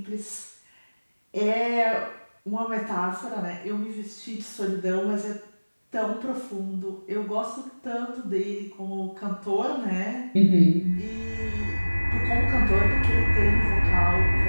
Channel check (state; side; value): inverted; both; correlation -1.00